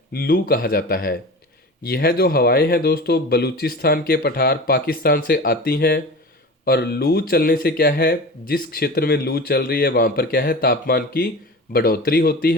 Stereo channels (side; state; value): both; normal; correlation 0.33